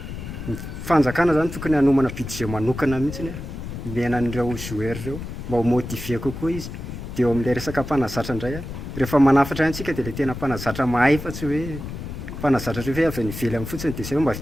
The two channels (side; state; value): left; noise; rumble, 9 dB below the sound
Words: ny fanjakana zany tokony hanomana budget manokana mihitsiny miaina an'ireo joueur ireo mba ho motiver kokoa izy dia eo amin'ilay resaka mpanazatra indray rehefa manafatra antsika dia ilay tena mpanazatra mahay fa tsy hoe mpanazatra hoe avy any ivelany fotsiny dia izay hoe mba